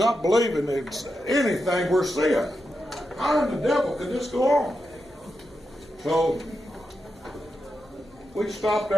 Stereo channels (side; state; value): both; normal; correlation 0.87